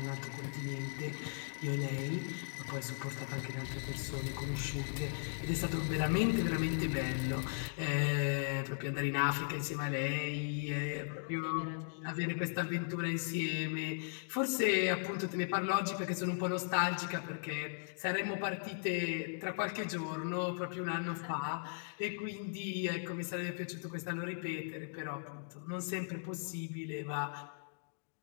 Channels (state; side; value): silent; right; digital silence